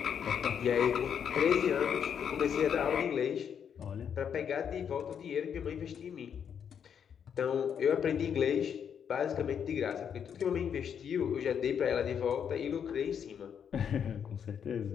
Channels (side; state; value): right; quieter; 7.9 dB